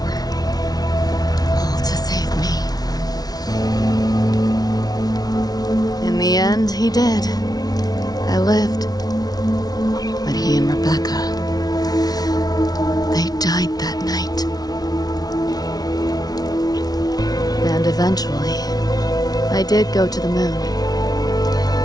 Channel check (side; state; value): right; late; 0.19 ms